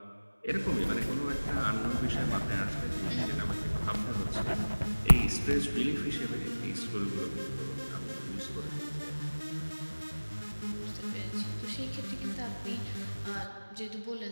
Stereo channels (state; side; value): inverted; both; correlation -1.00